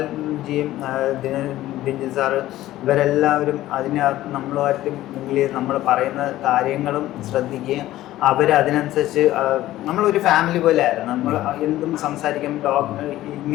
ജിയും ദിഞ്ചൻ സാറ് ഇവരെല്ലാവരും നമ്മളുമായിട്ട് നമ്മൾ പറയുന്ന കാര്യങ്ങളും ശ്രദ്ധിക്കുകയും അവരതിനനുസരിച്ച് നമ്മളൊരു ഫാമിലി പോലെ ആയിരുന്നു. നമ്മൾ എന്തും സംസാരിക്കും, ഡോഗ്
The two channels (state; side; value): quieter; right; 15.0 dB